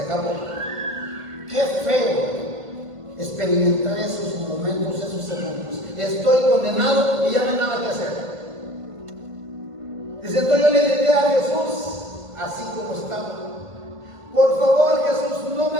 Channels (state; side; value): late; left; 1.5 ms